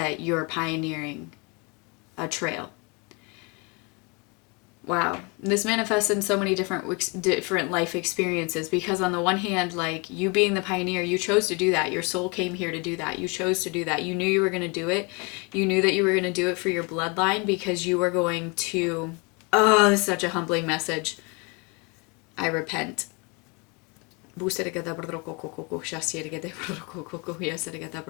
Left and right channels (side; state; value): right; quieter; 30.5 dB